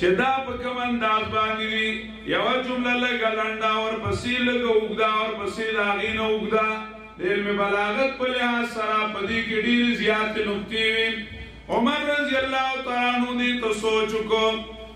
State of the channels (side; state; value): both; identical; correlation 1.00